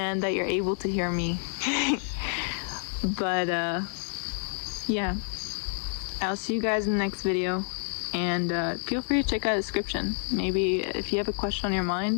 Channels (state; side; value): silent; right; digital silence